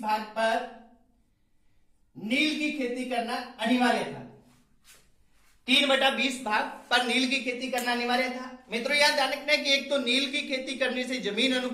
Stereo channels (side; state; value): both; identical; correlation 1.00